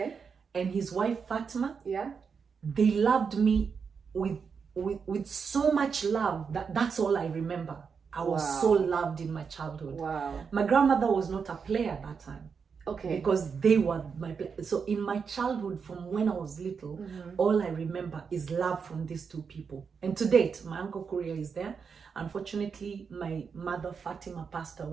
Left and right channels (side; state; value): left; quieter; 5.9 dB